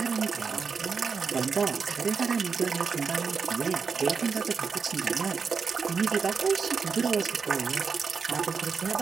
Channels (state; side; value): quieter; left; 5.5 dB